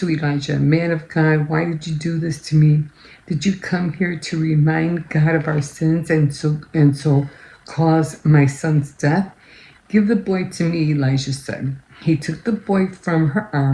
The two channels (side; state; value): both; identical; correlation 1.00